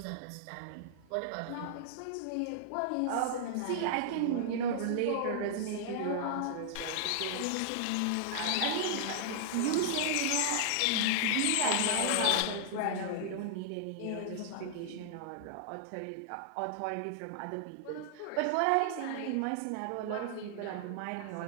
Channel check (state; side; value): different; both; correlation -0.01